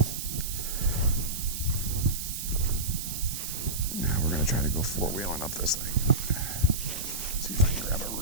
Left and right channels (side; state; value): right; noise; hiss, 5 dB below the sound